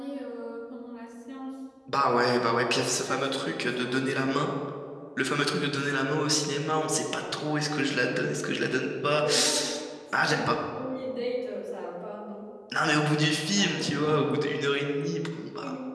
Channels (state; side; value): identical; both; correlation 1.00